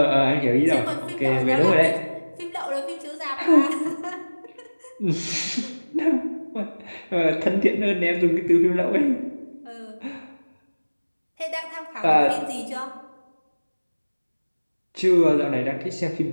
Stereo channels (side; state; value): both; inverted; correlation -1.00